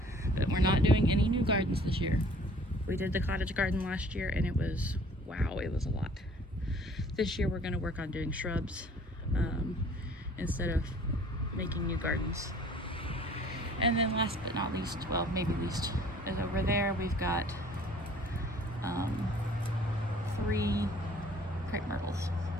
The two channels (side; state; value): both; normal; correlation 0.53